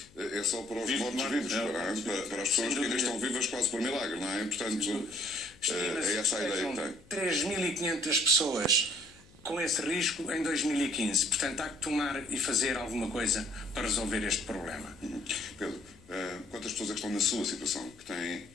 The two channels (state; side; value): noise; left; hum, 26 dB below the sound